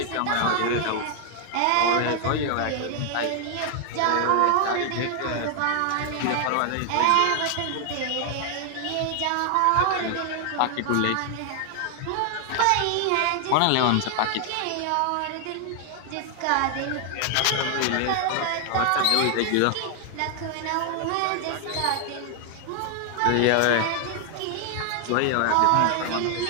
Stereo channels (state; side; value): different; both; correlation 0.00